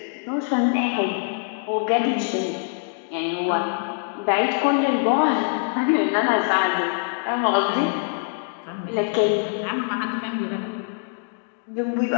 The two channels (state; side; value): silent; right; 63 dB below the other